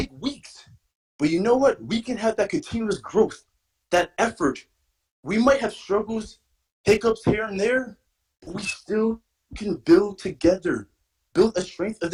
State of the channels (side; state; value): both; identical; correlation 1.00